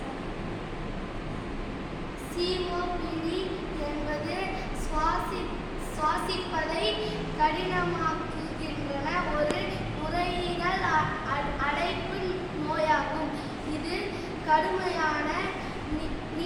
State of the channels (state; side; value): identical; both; correlation 1.00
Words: COPD என்பது சுவாசிப்பதை கடினமாக்குகின்ற ஒரு நுரையீரல் அடைப்பு நோயாகும். இது கடுமையான